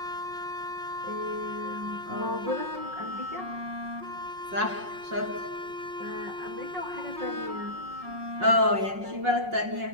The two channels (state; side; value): late; left; 5.5 ms